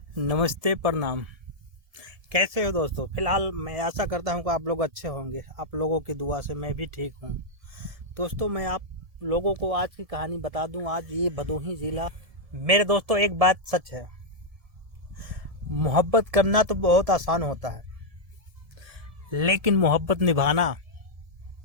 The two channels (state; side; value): late; left; 1.7 ms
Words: नमस्ते, प्रणाम। कैसे हो दोस्तों? फिलहाल मैं आशा करता हूँ कि आप लोग अच्छे होंगे। आप लोगों की दुआ से मैं भी ठीक हूँ। दोस्तों, मैं आप लोगों को आज की कहानी बता दूँ। आज ये भदोही ज़िला। मेरे दोस्तों, एक बात सच है, मोहब्बत करना तो बहुत आसान होता है, लेकिन मोहब्बत निभाना